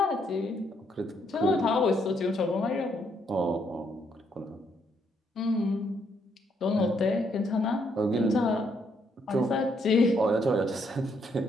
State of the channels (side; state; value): both; normal; correlation 0.73